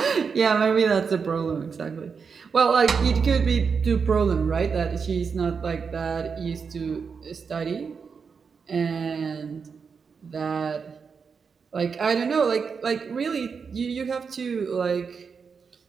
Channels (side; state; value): left; quieter; 5.7 dB